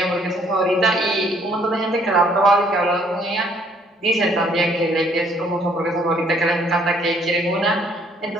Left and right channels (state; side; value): normal; both; correlation 0.64